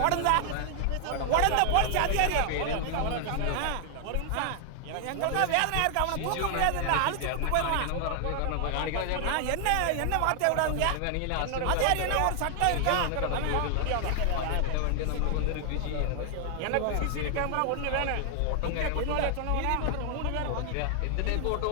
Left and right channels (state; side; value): different; both; correlation 0.00